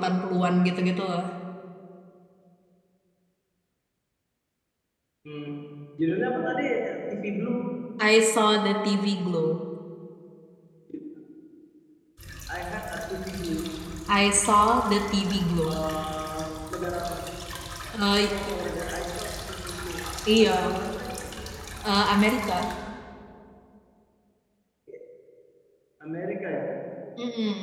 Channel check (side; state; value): both; identical; correlation 1.00